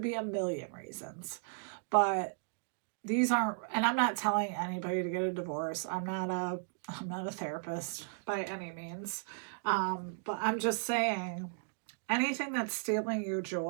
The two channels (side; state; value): left; silent; digital silence